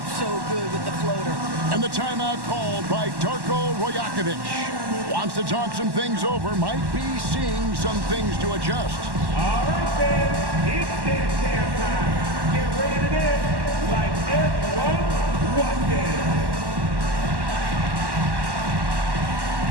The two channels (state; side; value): late; left; 1.1 ms